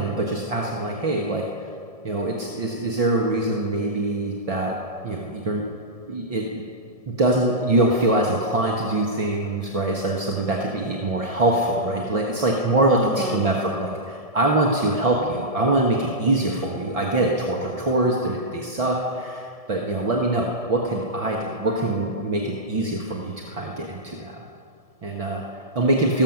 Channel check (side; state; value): left; late; 1.7 ms